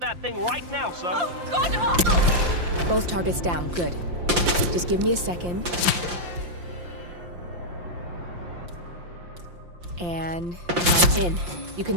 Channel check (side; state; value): left; late; 5.7 ms